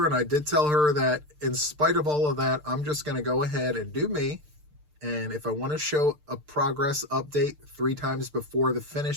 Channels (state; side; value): late; left; 6.7 ms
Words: and I did tell her that in spite of all of that, I'm just going to go ahead and do me. And if I want to show a progress update 3 times before the